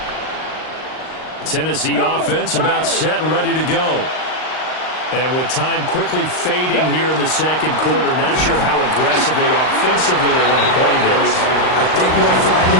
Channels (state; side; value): late; right; 39 ms